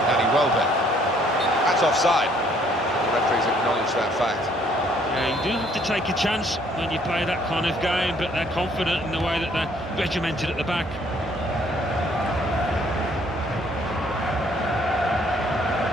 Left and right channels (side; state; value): both; normal; correlation 0.63